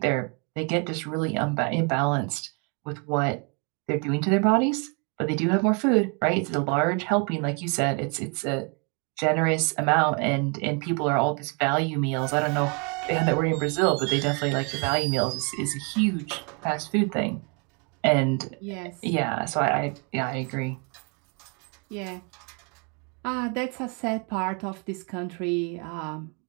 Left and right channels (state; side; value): quieter; left; 35.1 dB